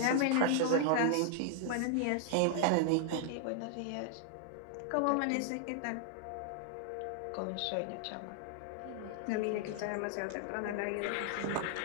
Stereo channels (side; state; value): both; different; correlation 0.00